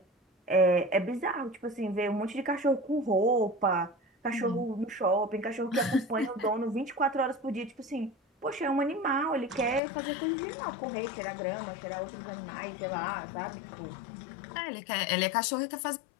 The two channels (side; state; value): right; drops out; at 9.8 s